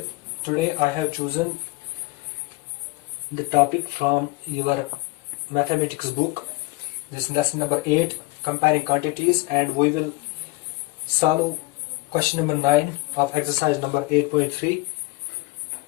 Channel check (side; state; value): right; quieter; 22.0 dB